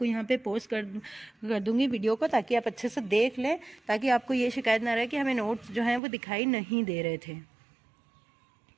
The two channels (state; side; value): drops out; left; at 6.0 s